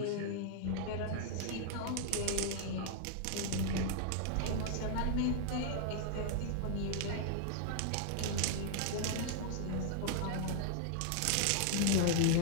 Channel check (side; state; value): both; different; correlation 0.00